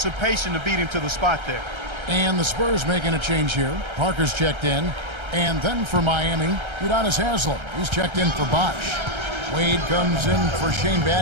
to beat him to the spot there. And the Spurs making a change here. Parker's checked in. And then for Miami, Udonis Haslem. He's checked in for Bosch. Wade comes in for Shane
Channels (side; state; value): left; late; 1.3 ms